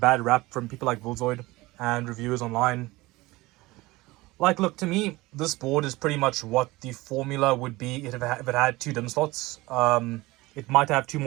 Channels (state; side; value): quieter; left; 20.6 dB